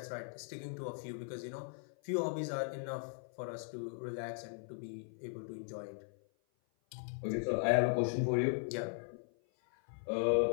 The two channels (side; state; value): right; silent; 52 dB below the other